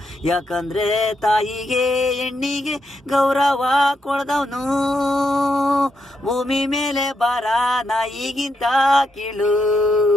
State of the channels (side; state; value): both; normal; correlation 0.81